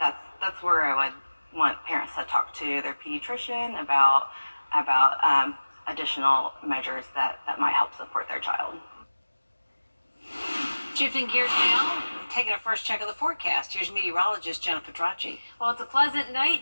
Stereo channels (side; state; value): both; inverted; correlation -1.00